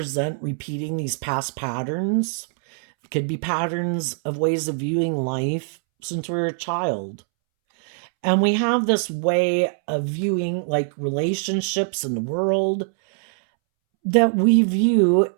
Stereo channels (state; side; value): silent; left; 64 dB below the other